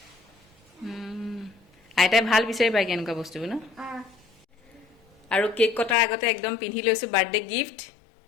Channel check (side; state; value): right; drops out; at 6.0 s